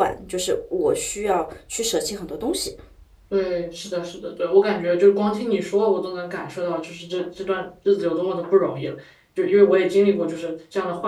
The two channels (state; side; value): identical; both; correlation 1.00